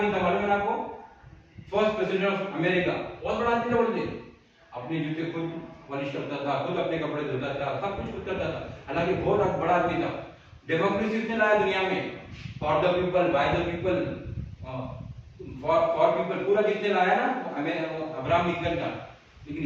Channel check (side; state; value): both; identical; correlation 1.00